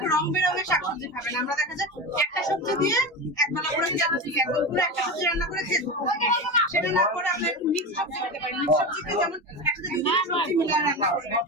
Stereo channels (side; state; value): both; normal; correlation 0.22